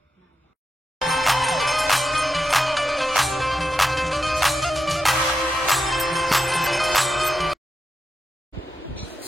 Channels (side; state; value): both; normal; correlation 0.87